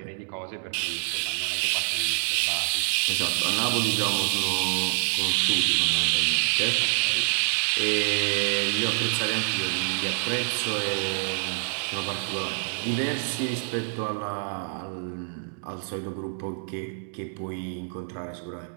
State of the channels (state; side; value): silent; left; digital silence